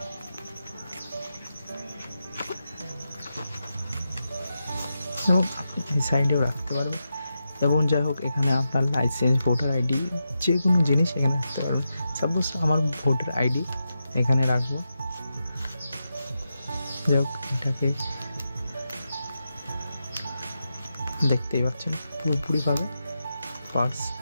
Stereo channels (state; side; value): inverted; both; correlation -0.88